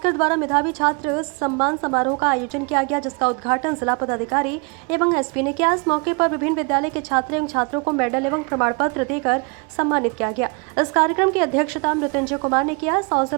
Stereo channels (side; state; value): left; quieter; 33.9 dB